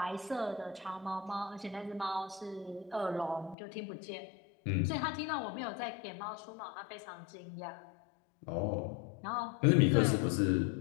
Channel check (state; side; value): drops out; right; at 3.6 s